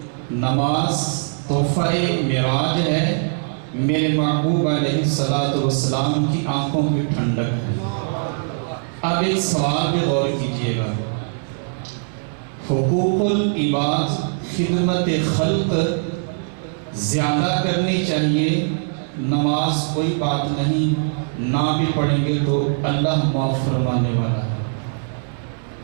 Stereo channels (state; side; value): silent; left; 63 dB below the other